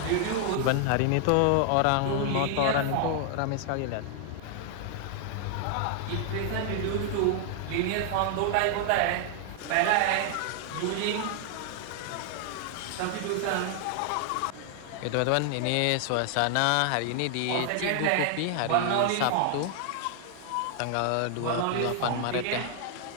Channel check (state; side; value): different; both; correlation 0.00